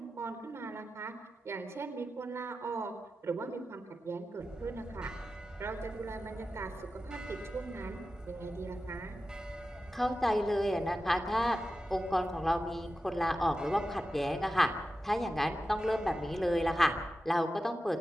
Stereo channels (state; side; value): normal; both; correlation 0.92